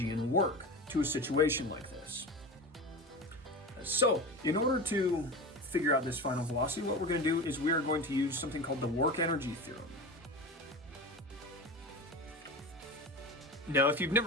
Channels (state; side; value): normal; both; correlation 0.28